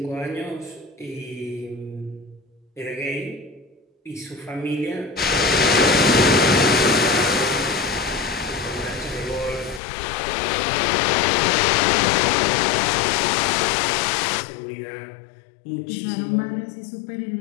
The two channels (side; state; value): right; drops out; at 9.8 s